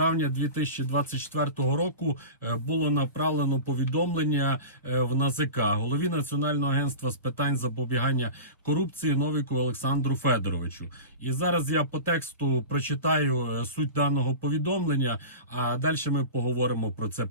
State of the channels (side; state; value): both; inverted; correlation -0.31